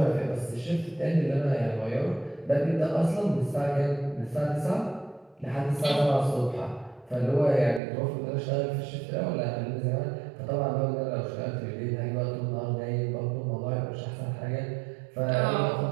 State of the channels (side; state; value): left; drops out; at 7.8 s